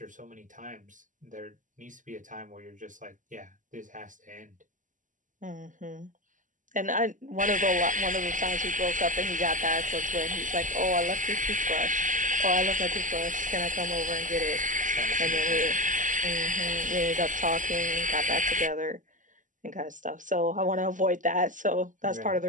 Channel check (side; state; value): left; late; 0.37 ms